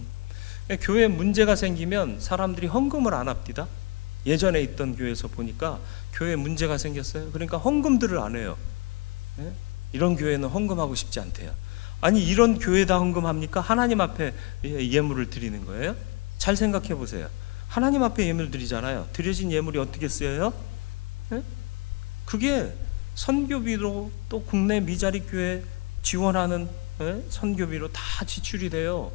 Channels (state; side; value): quieter; right; 27.9 dB